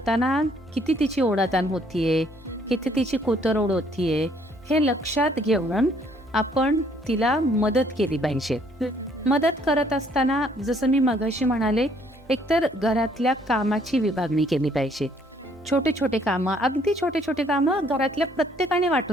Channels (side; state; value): both; normal; correlation 0.64